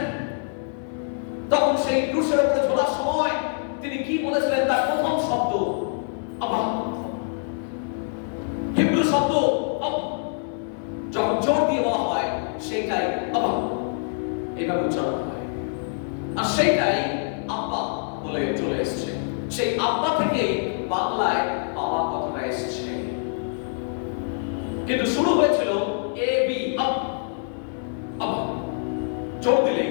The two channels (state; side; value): silent; right; 62 dB below the other